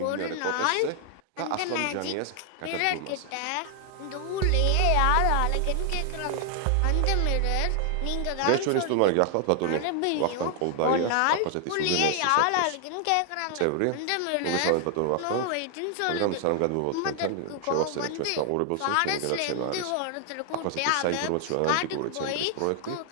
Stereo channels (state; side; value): different; both; correlation 0.00